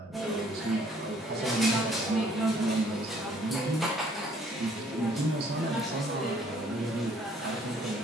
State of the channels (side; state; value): both; normal; correlation 0.61